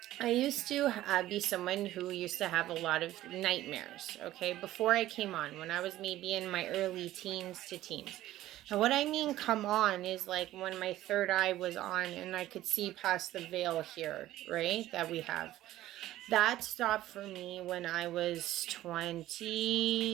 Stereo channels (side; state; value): left; quieter; 14.6 dB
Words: I used to be someone who used to have a lot of nightmares, okay, before I came on, when I was maybe in my early teens to teens. And what I mean come on is like when my third eye was on and I could see past the veil here, right, that we have. That stopped for me when I was